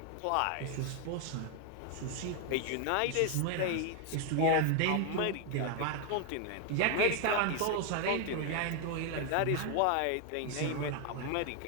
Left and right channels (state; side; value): different; both; correlation 0.00